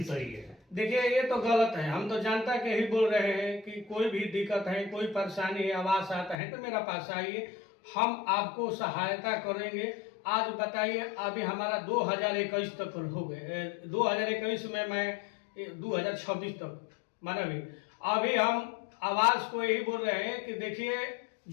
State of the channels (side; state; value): right; drops out; at 6.4 s